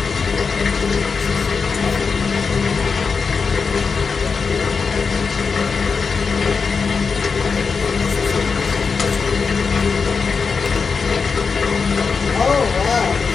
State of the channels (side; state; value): right; quieter; 5.2 dB